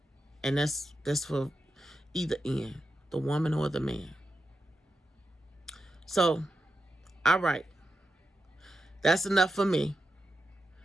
And that's for either end, the woman or the man. So, all right. That's enough for me.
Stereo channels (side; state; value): both; normal; correlation 0.88